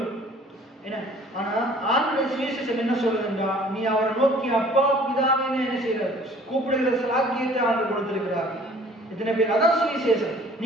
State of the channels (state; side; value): normal; both; correlation 0.52